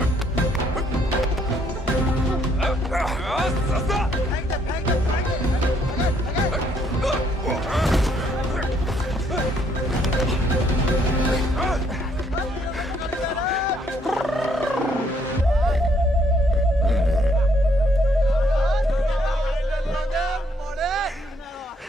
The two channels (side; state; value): both; normal; correlation 0.68